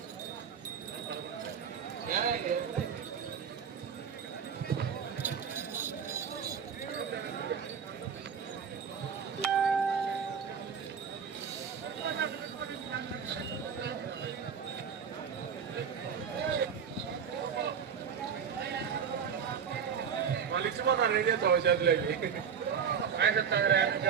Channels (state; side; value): quieter; left; 7.0 dB